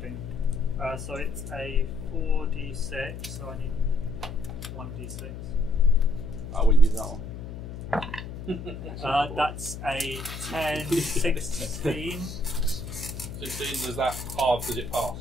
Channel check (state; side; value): noise; left; hum, 9 dB below the sound